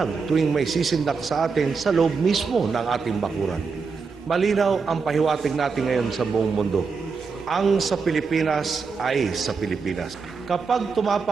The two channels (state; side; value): quieter; left; 5.0 dB